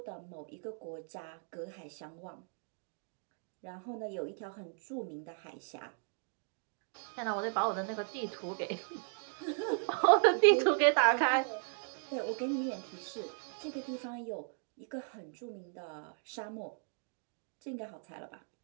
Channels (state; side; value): silent; left; 53 dB below the other